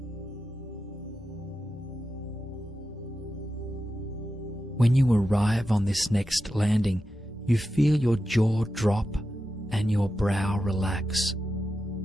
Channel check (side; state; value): both; normal; correlation 0.90